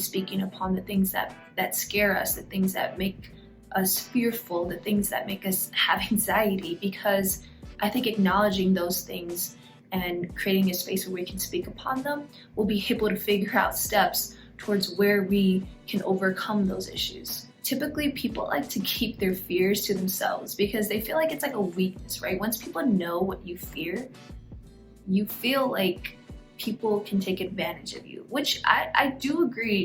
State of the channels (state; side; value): identical; both; correlation 1.00